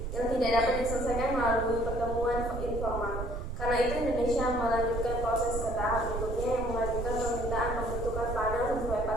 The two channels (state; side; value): noise; right; rumble, 5 dB below the sound